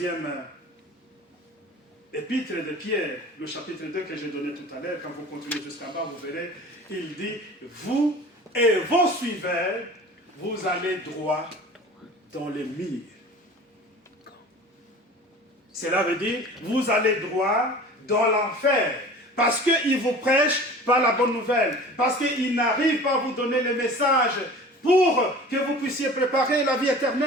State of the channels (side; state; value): both; normal; correlation 0.41